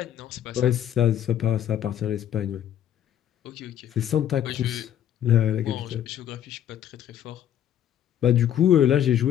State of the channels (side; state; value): right; quieter; 10.5 dB